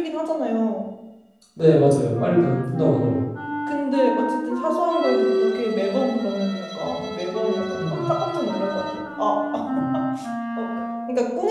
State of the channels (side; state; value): both; identical; correlation 1.00